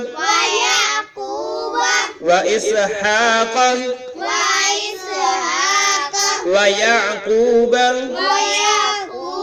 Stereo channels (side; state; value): both; identical; correlation 1.00